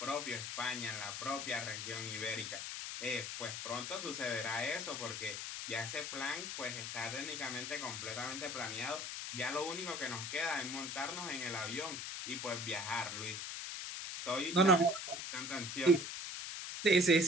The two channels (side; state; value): left; noise; hiss, 5 dB below the sound